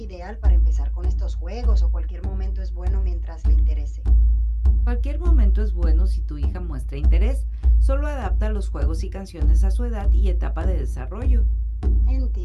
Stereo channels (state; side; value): identical; both; correlation 1.00